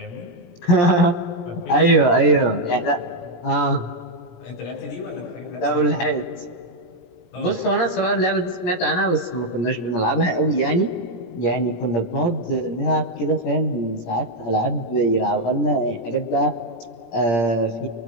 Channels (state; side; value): late; right; 17 ms